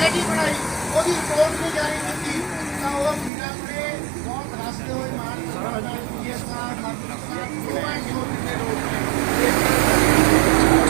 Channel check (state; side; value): drops out; left; at 3.3 s